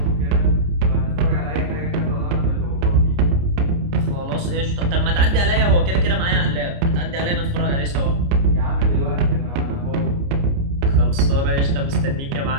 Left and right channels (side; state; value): left; late; 29 ms